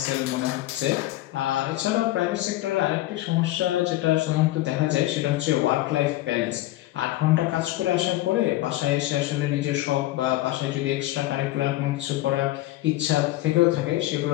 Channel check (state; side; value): quieter; right; 16.5 dB